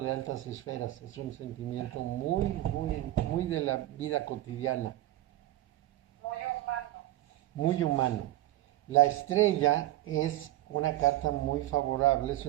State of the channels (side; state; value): left; quieter; 15.4 dB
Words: de altas esferas, es un sentimiento muy de la vida cotidiana. Muy humano. Muy humano. La estrella es una carta muy favorable, es